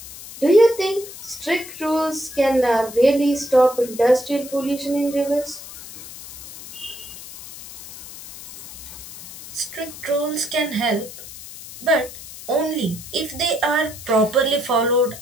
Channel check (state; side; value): noise; left; hiss, 14 dB below the sound